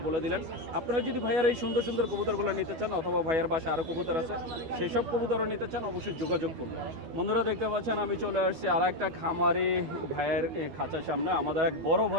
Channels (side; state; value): left; late; 12 ms